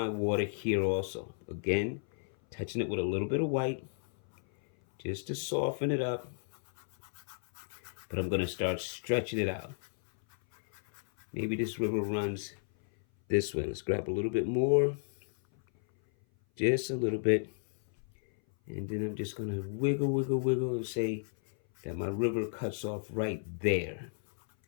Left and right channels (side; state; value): right; silent; 56 dB below the other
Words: water here also. Again, touching it with a little bit of white just to soften it up. But I'm going to start stretching it out. Maybe this river runs this way. Let's grab a little bit more. Just a little bit. And then I'm just going to wiggle, wiggle, wiggle and say that my river cuts off right there.